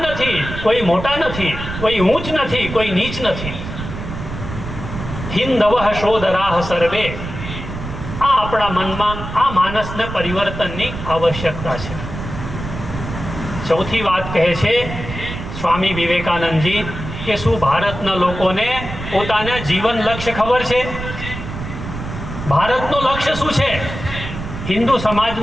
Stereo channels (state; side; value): noise; right; rumble, 8 dB below the sound